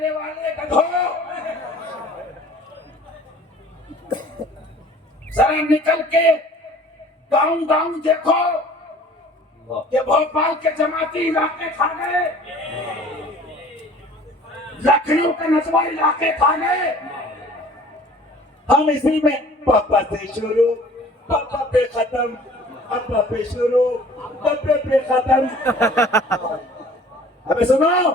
والے گدھو، ذرا نکل کے گاؤں گاؤں دیکھو کہ بھوپال کے جماعتی علاقے کھا گئے، لکھنؤ کے نسواں علاقے کھا گئے، ہم اسی میں پاپا سے شروع، پاپا پہ ختم، ابا پہ شروع ابے پہ ختم. ابے سنو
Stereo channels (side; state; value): both; normal; correlation 0.49